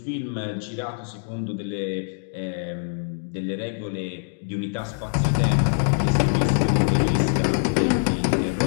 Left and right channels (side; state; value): right; silent; digital silence